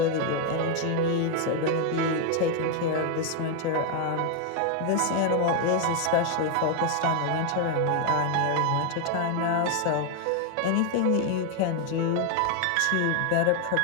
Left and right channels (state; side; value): different; both; correlation 0.01